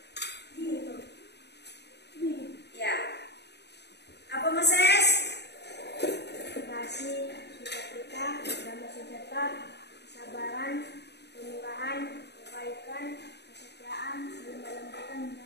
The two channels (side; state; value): right; late; 0.49 ms